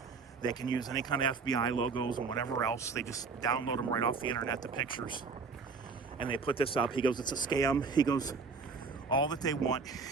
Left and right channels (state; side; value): quieter; left; 4.7 dB